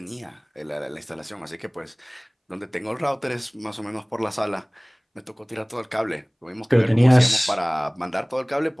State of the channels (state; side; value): identical; both; correlation 1.00